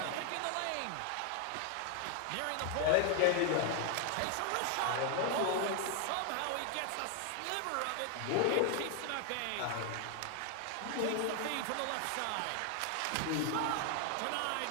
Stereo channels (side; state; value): both; different; correlation 0.00